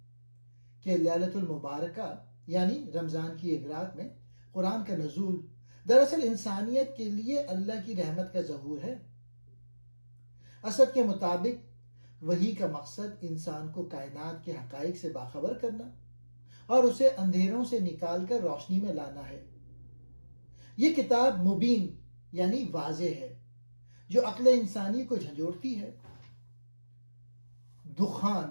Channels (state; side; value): inverted; both; correlation -1.00